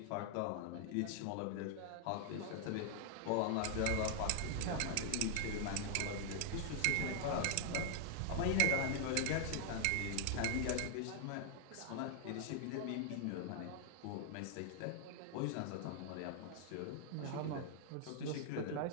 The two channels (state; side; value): different; both; correlation 0.00